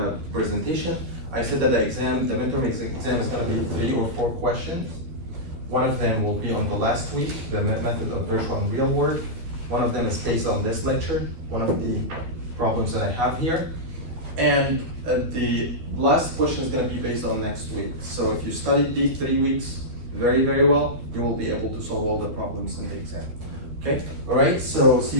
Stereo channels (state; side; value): late; left; 12 ms